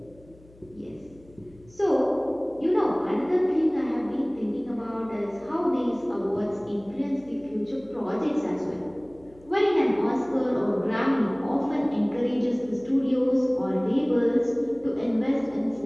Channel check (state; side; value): noise; left; hum, 26 dB below the sound